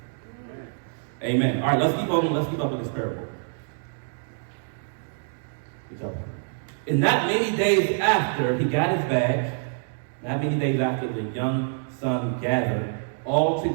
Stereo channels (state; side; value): silent; left; digital silence